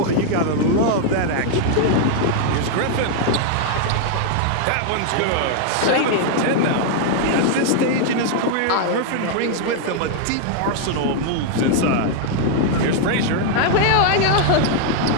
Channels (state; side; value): different; both; correlation 0.00